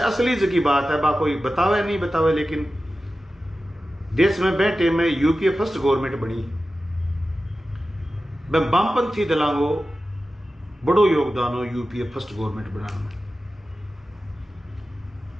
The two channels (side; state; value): both; normal; correlation 0.94